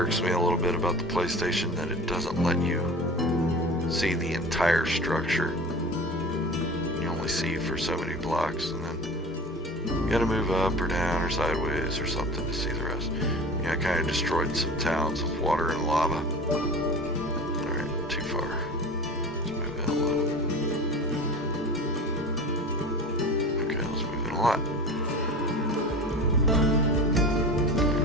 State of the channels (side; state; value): both; normal; correlation 0.35